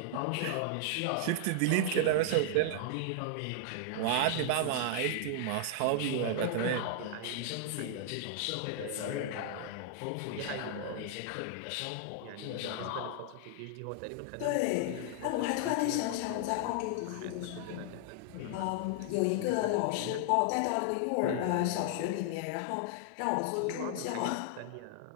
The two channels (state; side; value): different; both; correlation 0.00